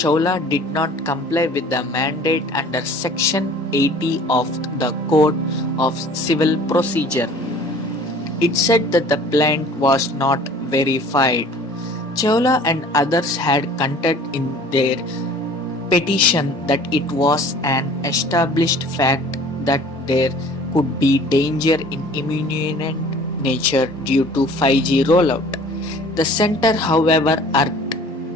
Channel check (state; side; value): normal; both; correlation 0.49